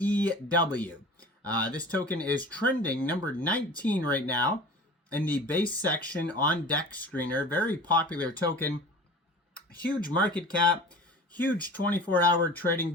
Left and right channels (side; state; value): both; normal; correlation 0.39